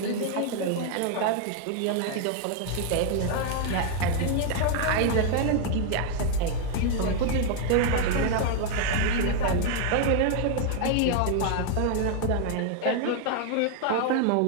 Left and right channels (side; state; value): both; different; correlation 0.00